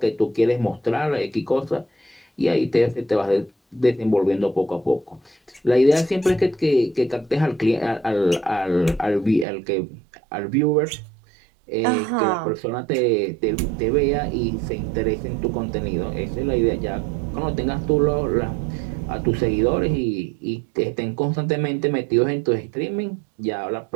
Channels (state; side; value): drops out; left; at 9.5 s